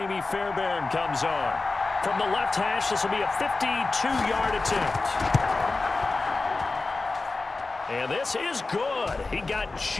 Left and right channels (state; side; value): quieter; right; 3.6 dB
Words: Fairbairn comes on. From the left hash, this will be a 52-yard attempt. And this is good. He got